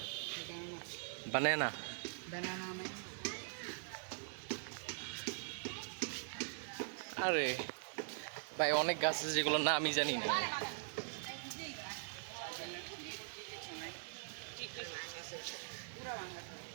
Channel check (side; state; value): left; silent; digital silence